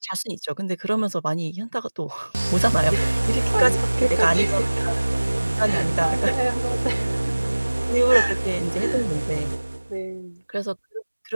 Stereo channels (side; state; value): both; inverted; correlation -1.00